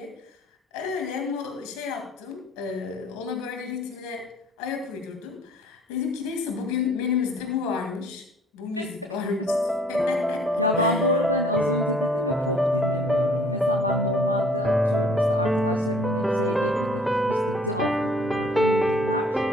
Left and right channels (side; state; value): both; normal; correlation 0.56